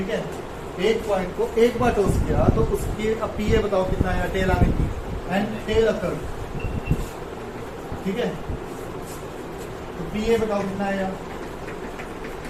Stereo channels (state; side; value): identical; both; correlation 1.00